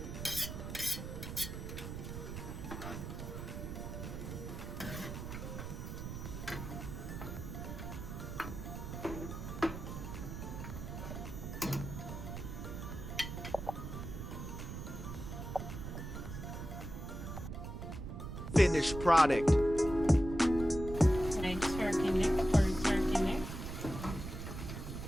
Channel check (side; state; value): right; noise; rumble, 7 dB below the sound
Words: Finished product. My turkey neck, curry turkey neck.